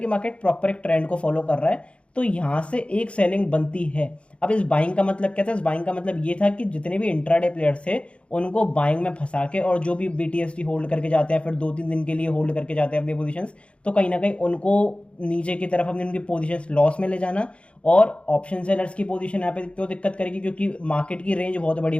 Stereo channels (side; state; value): right; late; 0.060 ms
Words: मार्केट प्रॉपर एक ट्रेंड को फॉलो कर रहा है, तो यहां से एक सेलिंग बनती है। अब इस बाइंग का मतलब क्या था? इस बाइंग का मतलब ये था कि जितने भी इंट्राडे प्लेयर्स थे उनको बाइंग में फंसा के, और जो भी बीटीएसटी होल्ड करके जाते हैं, फिर 2-3 दिन के लिए होल्ड करके जाते हैं अपनी पोजीशंस, तो कहीं ना कहीं उनको नीचे की तरफ अपनी उनकी पोजीशंस लॉस में ले जाना। और ऑप्शन सेलर्स की पोजीशन यहाँ पे क्यों दिक्कत करेगी? क्योंकि मार्केट की रेंज बहुत बड़ी